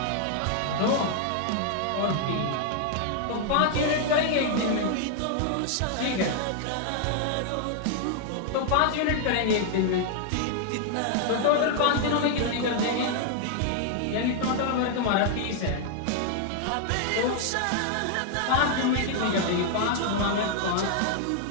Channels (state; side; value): different; both; correlation 0.00